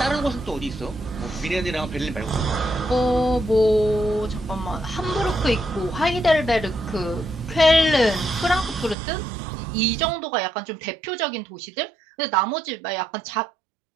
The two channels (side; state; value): left; drops out; at 9.0 s